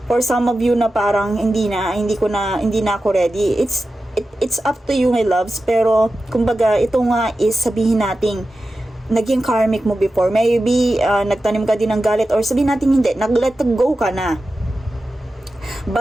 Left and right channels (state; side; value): normal; both; correlation 0.93